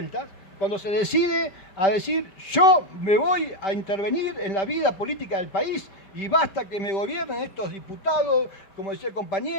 cuando se decide a decir, yo me voy a intervenir en la vida política del país y basta que me gobiernen estos diputados, como decía el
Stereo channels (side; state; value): right; late; 5.1 ms